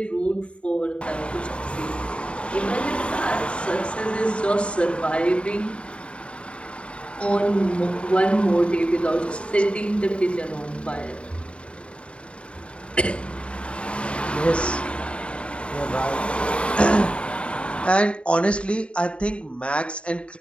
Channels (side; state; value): right; late; 0.058 ms